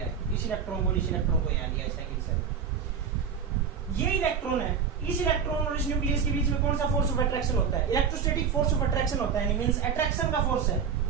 इस इलेक्ट्रॉन को इस इलेक्ट्रॉन को यहाँ लिया, सेकंड सेल। ये इलेक्ट्रॉन है, इस इलेक्ट्रॉन और इस न्यूक्लियस के बीच में कौन सा फोर्स ऑफ अट्रैक्शन होता है? इलेक्ट्रोस्टैटिक फोर्स ऑफ अट्रैक्शन होता है, मींस अट्रैक्शन का फोर्स है।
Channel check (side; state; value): left; quieter; 6.8 dB